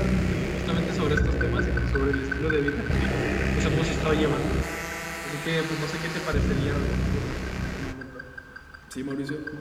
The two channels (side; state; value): both; identical; correlation 1.00